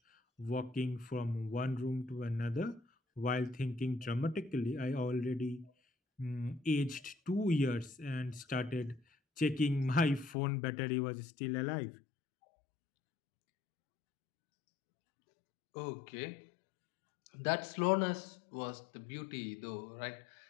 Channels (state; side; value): drops out; right; at 10.4 s